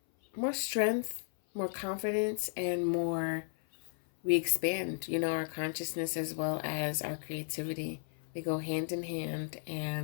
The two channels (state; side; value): silent; right; 55 dB below the other